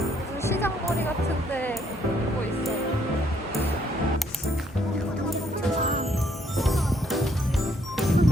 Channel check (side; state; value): both; normal; correlation 0.69